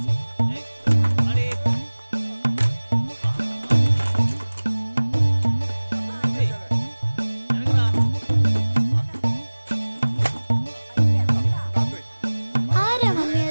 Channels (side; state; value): both; inverted; correlation -1.00